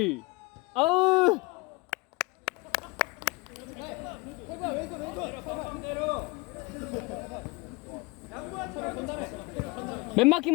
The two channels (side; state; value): right; quieter; 24.7 dB